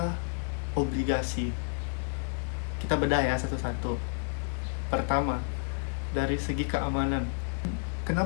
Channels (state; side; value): silent; right; digital silence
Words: obligasi. Kita bedah ya satu-satu. Pertama, dari segi keamanan.